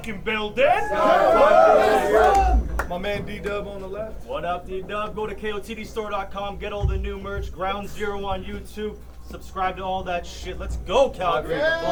building. My man Ddubb on the left. What up, Ddubb? Go to KOTDstore.com, get all the new merch. Ground Zero on YouTube. Subscribe to all that shit. Let's go, Calgary. Let's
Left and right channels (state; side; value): identical; both; correlation 1.00